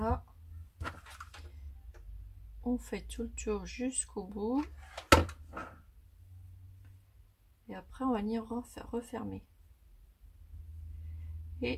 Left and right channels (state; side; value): identical; both; correlation 1.00